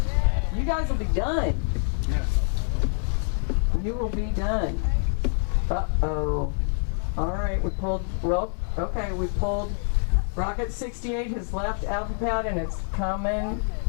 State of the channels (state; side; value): silent; right; 57 dB below the other